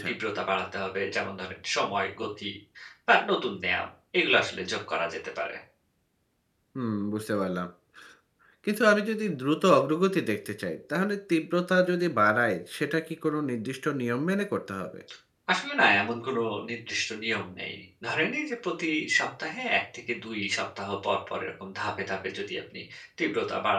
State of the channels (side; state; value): both; identical; correlation 1.00